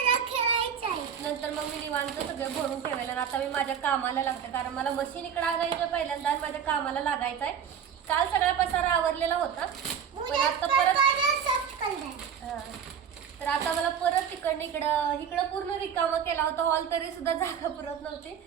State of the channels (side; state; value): left; quieter; 8.0 dB